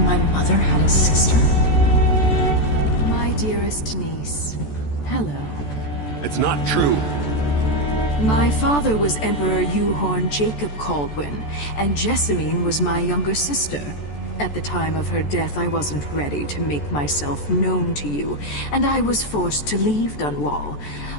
mother had a sister? My dearest niece, hello. It's not true. My father was Emperor Euhorn Jacob Caldwin, and Jessamine was my younger sister. At the time of her death, I wasn't ready to make myself known to you, and I was forced to leave Dunwall.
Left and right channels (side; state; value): right; late; 14 ms